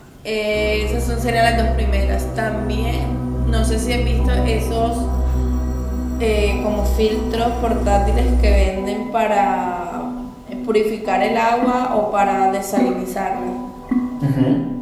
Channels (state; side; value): identical; both; correlation 1.00